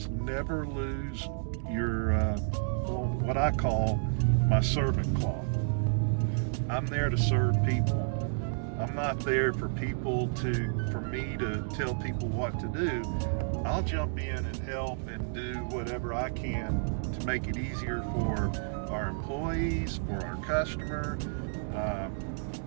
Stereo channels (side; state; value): left; silent; digital silence